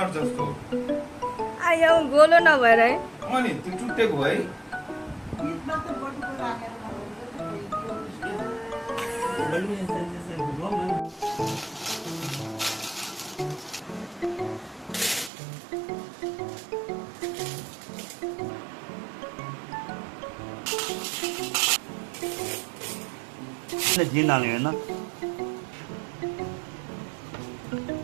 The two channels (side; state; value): left; drops out; at 15.3 s